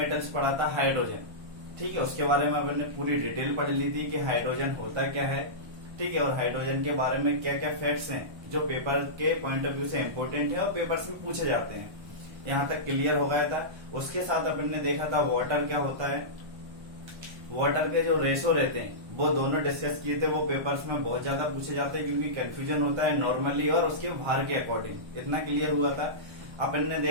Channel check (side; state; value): left; late; 1.1 ms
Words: पढ़ा था हाइड्रोजन। ठीक है, उसके बारे में अपन ने पूरी डिटेल पढ़ ली थी कि हाइड्रोजन होता क्या है। ठीक है, और हाइड्रोजन के बारे में क्या क्या फैक्ट्स हैं जो पेपर के पॉइंट ऑफ व्यू से इम्पोर्टेंट है और पेपर्स में पूछे जाते हैं। यहाँ तक क्लियर हो गया था। उसके साथ अपन ने देखा था वाटर क्या होता है। वाटर के जो रेशो रहते हैं वो दोनों डिस्कस किए थे। वो पेपर्स में बहुत ज्यादा पूछे जाते हैं क्योंकि कंफ्यूजन होता है नॉर्मली और उसके भार के अकॉर्डिंग। इतना क्लियर हुआ था। अपन ने